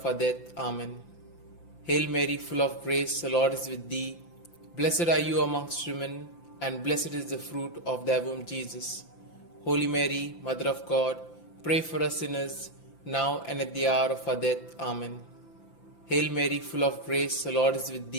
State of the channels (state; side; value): late; right; 5.9 ms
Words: our death. Amen. Hail Mary, full of grace, the Lord is with thee. Blessed are you amongst women, and blessed is the fruit of thy womb, Jesus. Holy Mary, Mother of God, pray for us sinners, now and at the hour of our death. Amen. Hail Mary, full of grace, the Lord is with